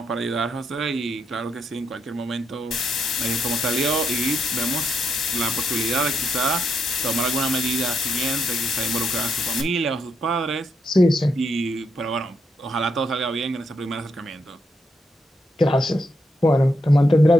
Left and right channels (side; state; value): both; normal; correlation 0.80